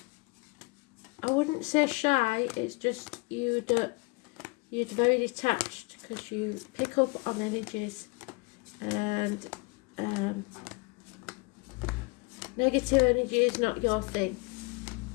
wouldn't say shy, it's just you're very detached because you pick up on energies. And negative energy is not your thing.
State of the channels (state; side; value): quieter; right; 27.9 dB